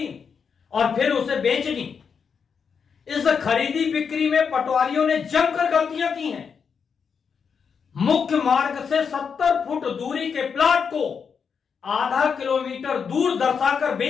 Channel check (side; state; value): right; quieter; 6.3 dB